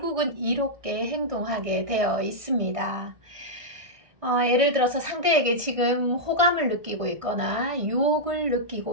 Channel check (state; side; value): late; left; 1.6 ms